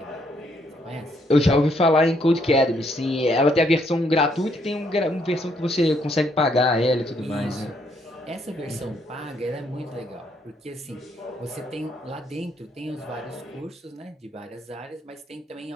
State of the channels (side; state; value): both; normal; correlation 0.71